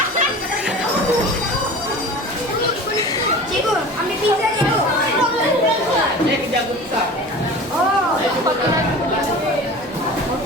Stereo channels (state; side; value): normal; both; correlation 0.37